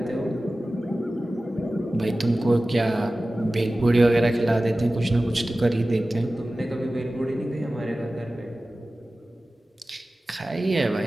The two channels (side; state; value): both; normal; correlation 0.96